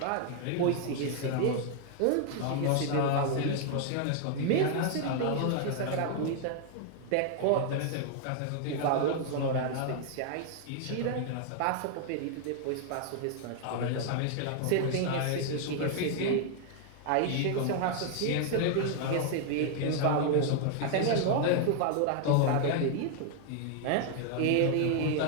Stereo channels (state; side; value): different; both; correlation 0.00